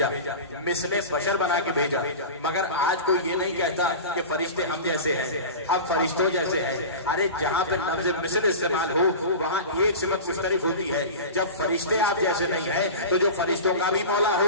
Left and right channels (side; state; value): both; inverted; correlation -0.31